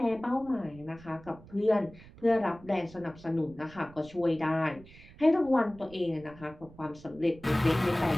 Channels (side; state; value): right; noise; rumble, 21 dB below the sound